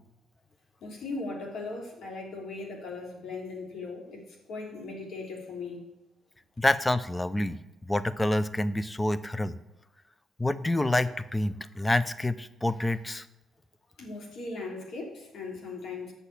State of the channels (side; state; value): both; normal; correlation 0.93